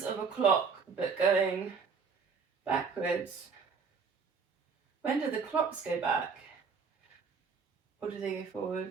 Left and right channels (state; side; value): quieter; left; 5.4 dB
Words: of a clock, but going backwards. When do the clocks go back? Or do they go